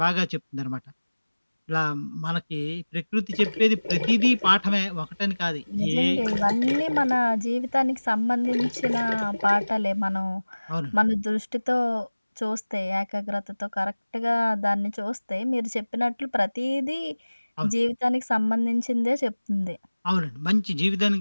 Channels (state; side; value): inverted; both; correlation -1.00